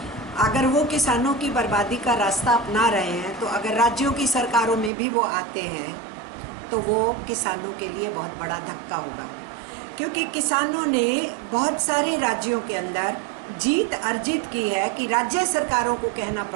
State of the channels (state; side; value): drops out; left; at 4.9 s